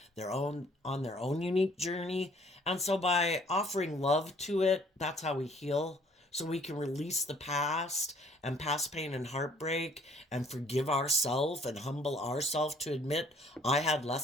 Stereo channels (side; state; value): both; normal; correlation 0.59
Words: their own unique journey. And so by offering love to it, that's how we heal. So we can release the past and past pain and heartbreak and forgive ourselves and humble ourselves to admit I had